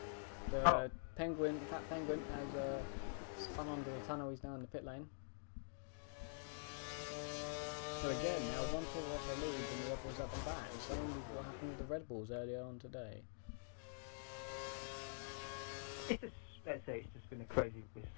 The Penguin, Fat Penguin, has spun under the tunnel. He's now in the pit lane. So again, now one Toro Rosso leads and the other was at the back. Same with what happened with the Red Bulls earlier on today. It's just, let's say, it's just been a crazy. It's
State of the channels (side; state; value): right; silent; digital silence